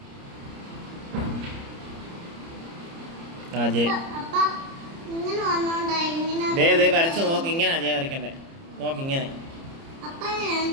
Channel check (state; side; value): late; left; 30 ms